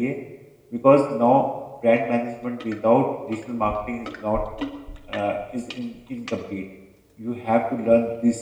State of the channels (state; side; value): identical; both; correlation 1.00